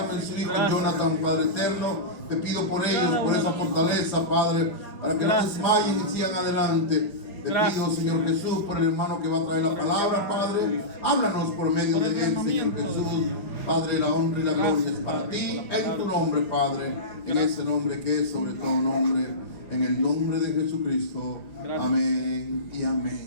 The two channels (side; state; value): right; late; 4.9 ms